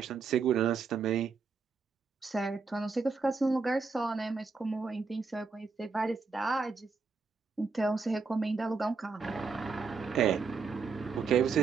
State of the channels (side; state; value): left; quieter; 4.7 dB